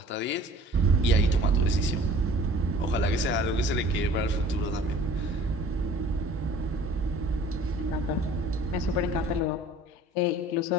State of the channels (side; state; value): both; normal; correlation 0.48